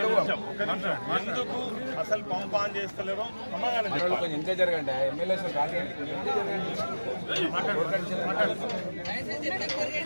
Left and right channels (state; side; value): inverted; both; correlation -1.00